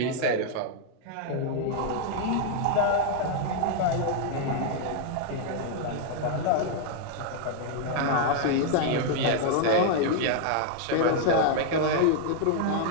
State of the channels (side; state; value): both; different; correlation -0.01